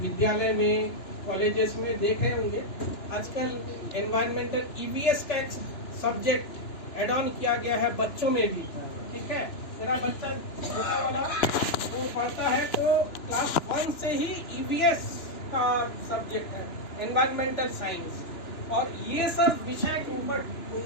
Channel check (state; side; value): late; right; 2.9 ms